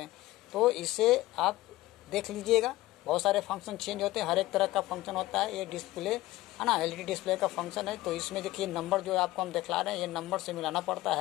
तो इसे आप देख लीजिएगा, बहुत सारे फंक्शन चेंज होते हैं, हर एक तरह का फंक्शन होता है। ये डिस्प्ले है ना, एलईडी डिस्प्ले का फंक्शन है। तो इसमें देखिए नंबर जो आपको हम दिखला रहे हैं ये नंबर से मिलाना पड़ता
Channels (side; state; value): right; quieter; 17.3 dB